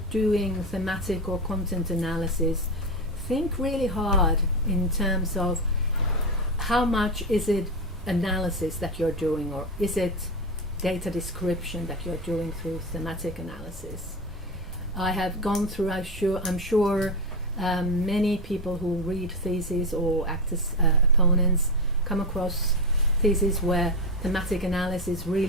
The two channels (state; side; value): normal; both; correlation 0.16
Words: doing thematic or content analysis, think really hard in terms of how much is it analysis that you're doing, or is it data description that you're doing through thematic analysis. I have gone through, I'm sure many people who read theses or act as opponents come across theses where thematic analysis